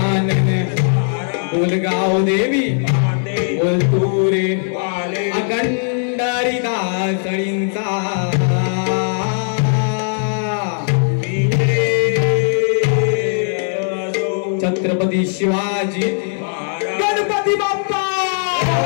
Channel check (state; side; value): silent; right; 67 dB below the other